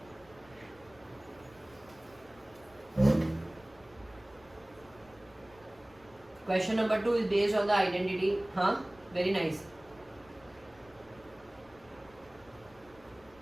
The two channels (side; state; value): left; noise; rumble, 26 dB below the sound